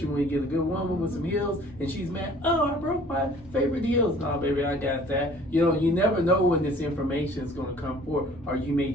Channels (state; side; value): noise; right; hum, 23 dB below the sound